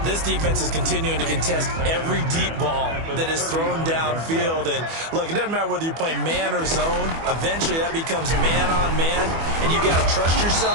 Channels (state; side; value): late; left; 24 ms